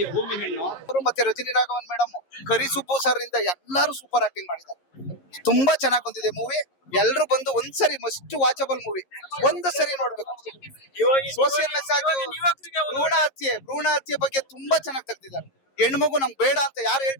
ಭೂಮಿ ಹೆಣ್ಣು. ಮತ್ತೆ ರಜನಿ ರಾಘವನ್ ಮೇಡಮ್, ಕರಿ ಸುಬ್ಬು ಸರ್ ಇಂದ ಎಲ್ಲಾರು ಸೂಪರ್ ಆಕ್ಟಿಂಗ್ ಮಾಡಿದ್ದಾರೆ. ತುಂಬಾ ಚೆನ್ನಾಗಿ ಬಂದಿದೆ ಮೂವಿ. ಎಲ್ರು ಬಂದು ಒಂದ್ಸರಿ ಮಸ್ಟ್ ವಾಚಬಲ್ ಮೂವಿ, ಒಂದು ಸರಿ ನೋಡ್ಬೇಕು. ಸೋಷಿಯಲ್ ಮೆಸೇಜ್, ಭ್ರೂಣ ಹತ್ಯೆ ಬಗ್ಗೆ ತುಂಬಾ ಚೆನ್ನಾಗಿ ತೆಗ್ದಿದ್ದಾರೆ. ಹೆಣ್ಮಗು ನಮ್ಗೆ ಬೇಡ ಅಂತ ಯಾರು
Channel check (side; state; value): right; late; 11 ms